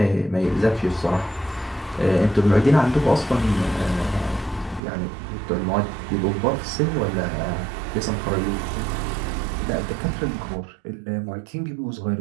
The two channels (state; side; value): drops out; left; at 4.8 s